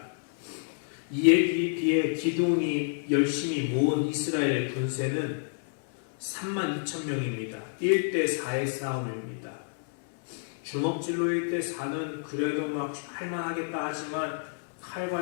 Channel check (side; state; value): right; silent; digital silence